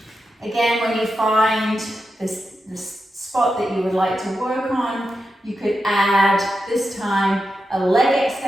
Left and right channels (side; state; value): both; normal; correlation 0.88